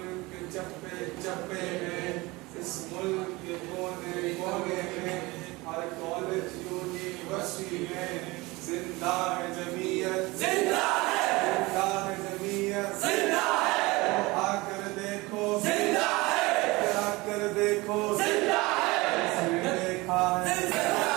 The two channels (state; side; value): quieter; left; 22.5 dB